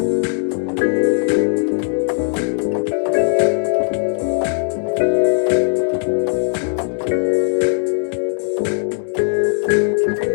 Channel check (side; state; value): right; silent; 67 dB below the other